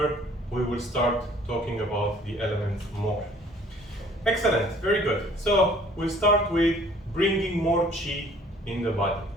we will start talking about the elements more. Excellent, very good. So we'll start with bringing more qi in the body.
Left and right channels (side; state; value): both; normal; correlation 0.55